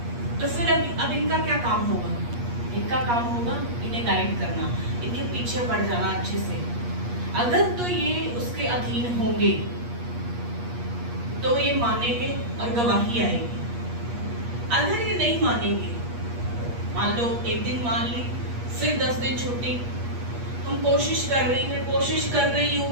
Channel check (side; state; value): left; late; 8.4 ms